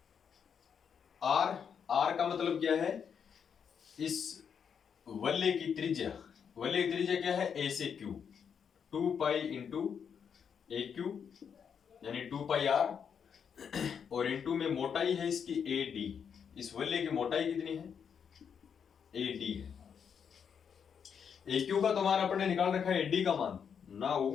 r का मतलब क्या है, इस वलय की त्रिज्या, वलय की त्रिज्या क्या है a से q, 2 पाई इंटू ए क्यू यानी 2 पाई r, और इंटू में मोटाई है इसकी AD, इस वलय की मोटाई कितनी है AD है। AQ का तो मान अपन ने निकाल रखा है AD का मान, now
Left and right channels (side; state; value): right; quieter; 7.2 dB